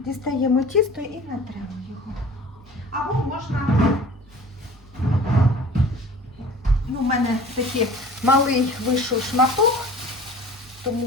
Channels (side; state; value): both; normal; correlation 0.44